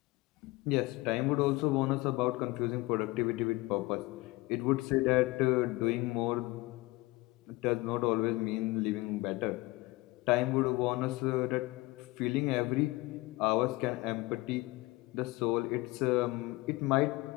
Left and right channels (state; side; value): quieter; right; 21.5 dB